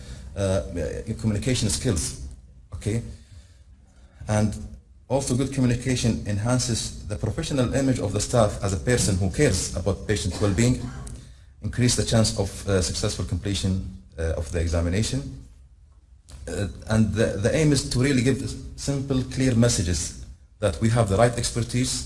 communication skills, okay? And also good communication enhances the professional image of the staff as a person who cares about patient well-being, increase the chance of successful completion of the examination. And the aim is to really give simple, clear messages that we have the right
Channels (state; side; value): identical; both; correlation 1.00